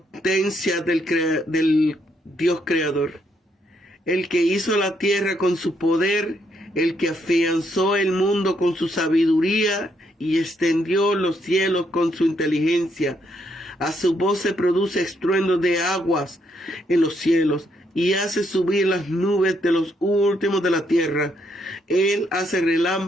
del Dios creador, el que hizo la tierra con su poder, el que afianzó el mundo con su sabiduría y extendió los cielos con su inteligencia. A su voz se produce estruendo de aguas en los cielos, y hace subir las nubes de los últimos de la tierra. Él hace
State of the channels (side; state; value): both; normal; correlation 0.75